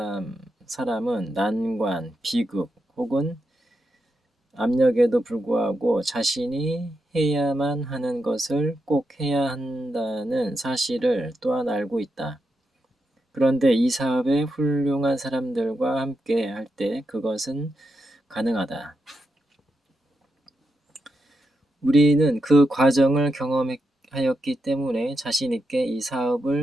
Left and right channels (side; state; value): both; normal; correlation 0.85